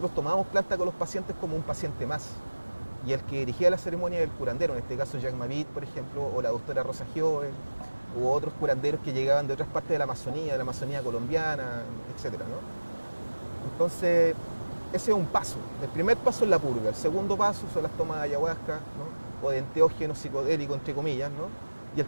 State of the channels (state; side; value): inverted; both; correlation -1.00